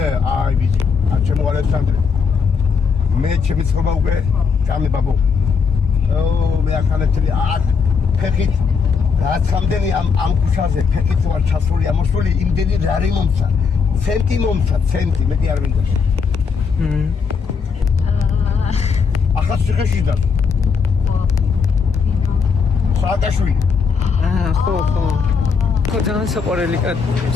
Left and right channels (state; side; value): quieter; right; 5.6 dB